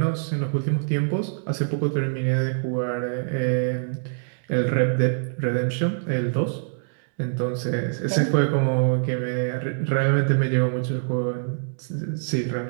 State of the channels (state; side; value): silent; left; digital silence